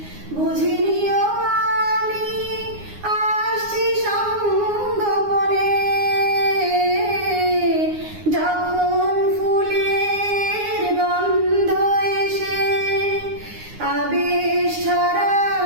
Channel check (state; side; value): late; left; 9.7 ms